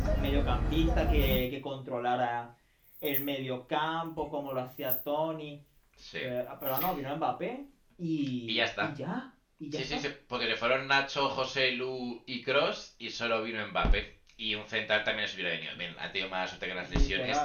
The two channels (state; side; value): identical; both; correlation 1.00